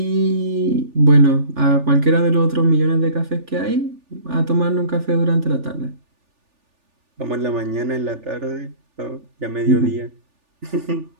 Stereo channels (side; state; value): left; late; 3.4 ms